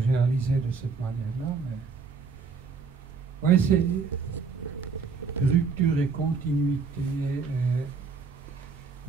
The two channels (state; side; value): quieter; left; 5.1 dB